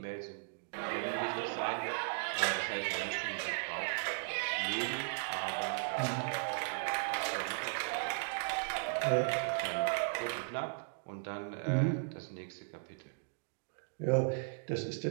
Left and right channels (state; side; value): silent; left; digital silence